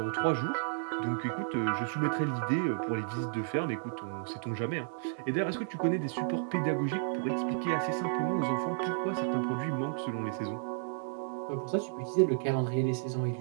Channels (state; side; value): silent; left; digital silence